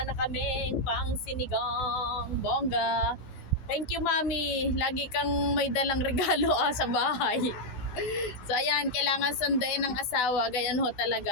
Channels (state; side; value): late; right; 15 ms